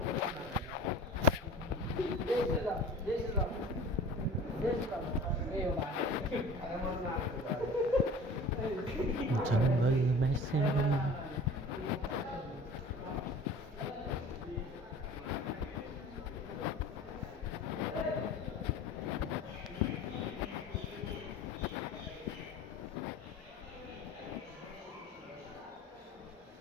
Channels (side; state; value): both; normal; correlation 0.41